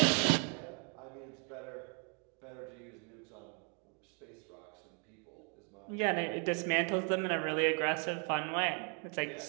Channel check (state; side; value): quieter; left; 38.7 dB